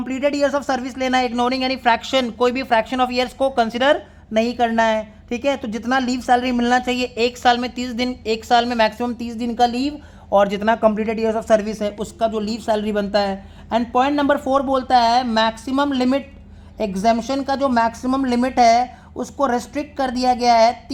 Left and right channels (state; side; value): identical; both; correlation 1.00